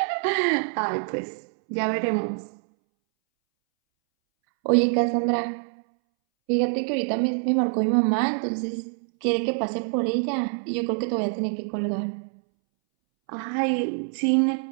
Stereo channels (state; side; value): silent; left; 62 dB below the other